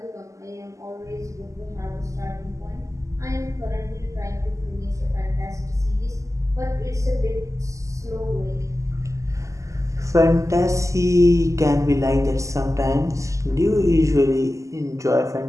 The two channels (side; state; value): left; late; 0.16 ms